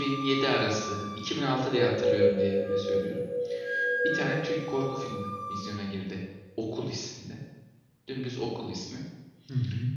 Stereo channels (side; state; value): both; identical; correlation 1.00